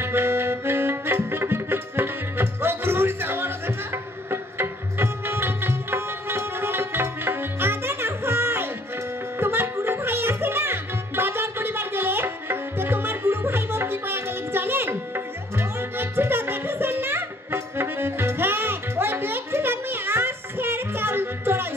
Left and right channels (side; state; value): both; normal; correlation 0.61